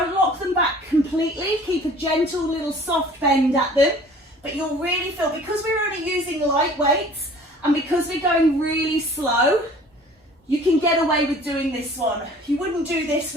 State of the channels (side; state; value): both; normal; correlation 0.49